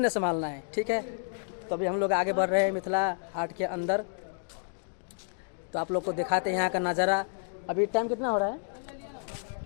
संभालना है, ठीक है। तो अभी हम लोग आगे बढ़ रहे हैं मिथिला हाट के अंदर। तो आप लोग को दिखाते हैं यहाँ का नज़ारा। अभी टाइम कितना हो रहा है?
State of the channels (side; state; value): right; silent; digital silence